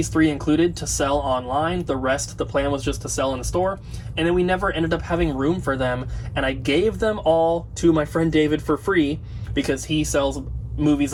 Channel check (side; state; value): both; identical; correlation 1.00